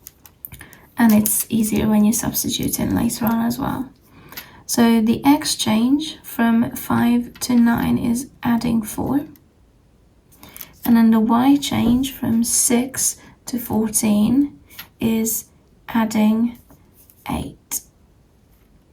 And it's easier when you substitute in later on as well. So the x change from 5 to 9 is adding 4. And then the y change from 6 to 14 is adding 8.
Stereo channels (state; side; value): identical; both; correlation 1.00